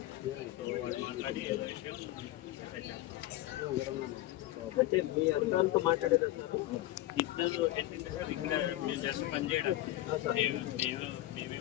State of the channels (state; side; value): quieter; right; 15.8 dB